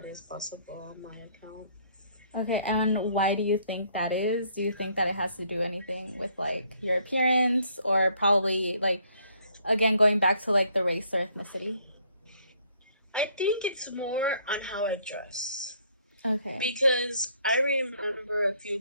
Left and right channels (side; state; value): both; inverted; correlation -0.65